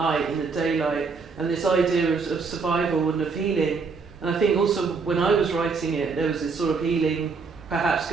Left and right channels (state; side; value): quieter; left; 4.8 dB